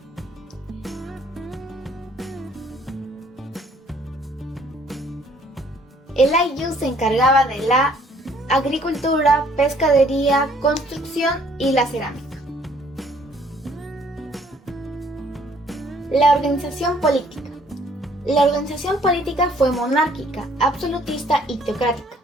El ayllu se encargaba de la agricultura, pescadería, construcción y la cerámica. La organización política. La organización política fue monárquica, absolutista y teocrática.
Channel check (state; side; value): normal; both; correlation 0.61